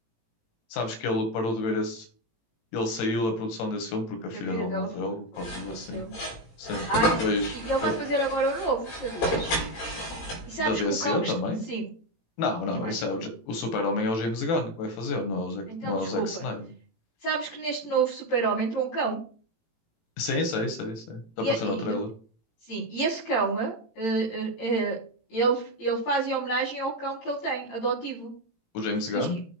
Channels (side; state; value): right; late; 18 ms